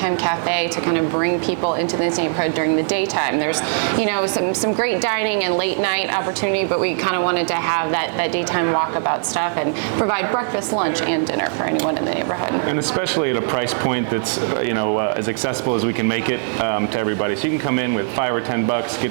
cafe to kind of bring people into this neighborhood during the daytime. There's, some great dining and late night opportunity, but we kind of wanted to have that daytime walkabout stuff and provide breakfast, lunch, and dinner for anyone in the neighborhood. And especially at a price point that's, as accessible as we can make it to everybody. So you can come in with $5 or $10,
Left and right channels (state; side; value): silent; left; digital silence